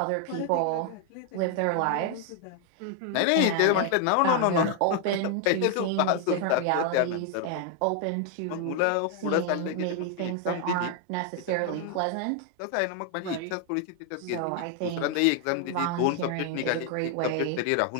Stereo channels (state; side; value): different; both; correlation 0.00